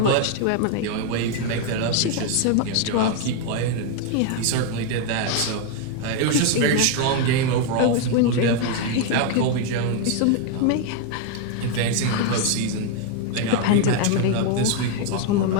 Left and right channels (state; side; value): different; both; correlation 0.01